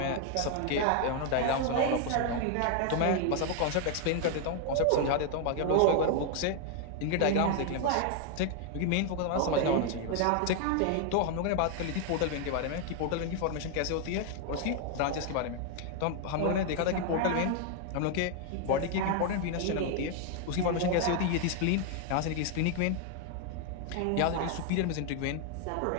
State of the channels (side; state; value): both; different; correlation 0.00